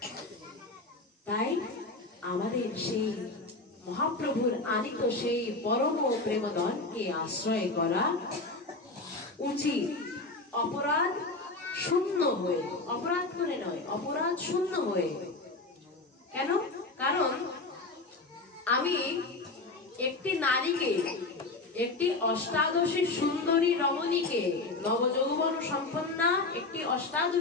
তাই আমাদের সেই মহাপ্রভুর আনিত সেই পরম প্রেমধনকে আশ্রয় করা উচিত, অপরাধ শূন্য হয়ে, অপরাধ করে নয়, অপরাধ শূন্য হয়ে। কেন? কারণ আমি একটি নারীকে, একটি অষ্টাদশী সুন্দরী রমণীকে, নবযৌবন সম্পন্না একটি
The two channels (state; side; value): quieter; right; 3.3 dB